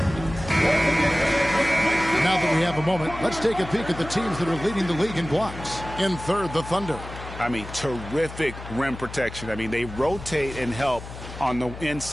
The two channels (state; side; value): noise; left; hum, 12 dB below the sound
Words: Now that we have a moment, let's take a peek at the teams that are leading the league in blocks. In third, the Thunder. I mean, terrific rim protection. I mean, they rotate and help on the